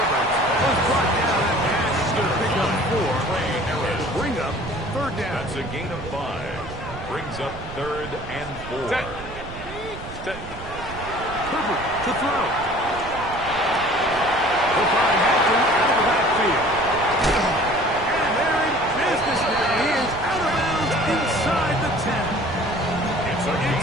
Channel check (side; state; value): right; noise; rumble, 13 dB below the sound